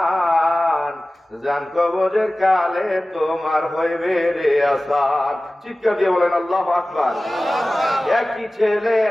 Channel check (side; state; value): both; normal; correlation 0.97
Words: জান কবরের কালে তোমার হইবে রে আসার। চিৎকার দিয়ে বলেন আল্লাহু আকবার।